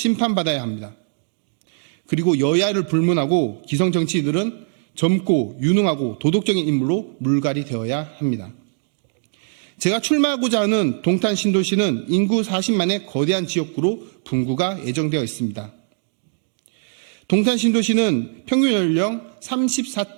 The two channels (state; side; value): silent; left; digital silence